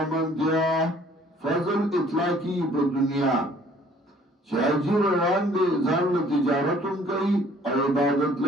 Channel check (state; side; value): normal; both; correlation 0.57